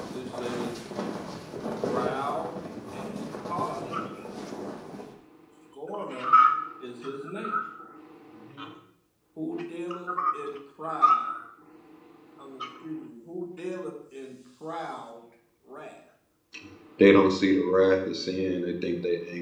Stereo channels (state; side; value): identical; both; correlation 1.00